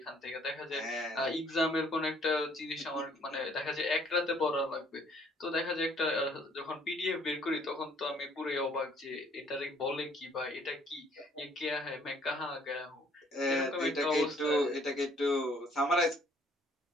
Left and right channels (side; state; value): both; normal; correlation 0.61